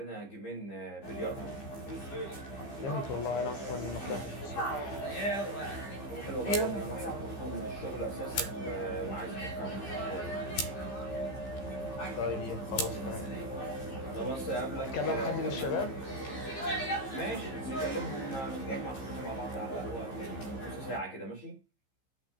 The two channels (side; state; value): right; late; 15 ms